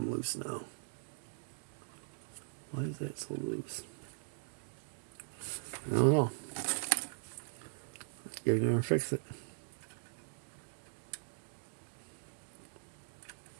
loose now. Why is that so loose? I don't know. Let's get in there and fix it.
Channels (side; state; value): left; silent; digital silence